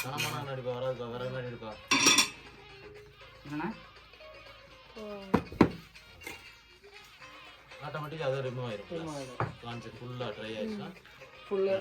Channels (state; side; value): identical; both; correlation 1.00